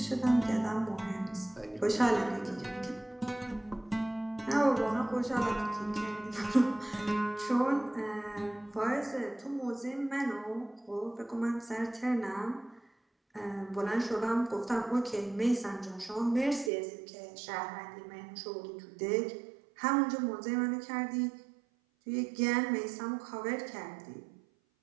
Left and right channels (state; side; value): drops out; left; at 16.7 s